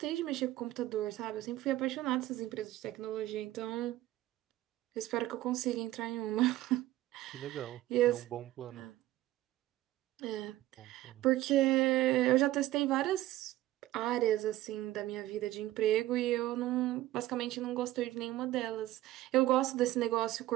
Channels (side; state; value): left; quieter; 15.6 dB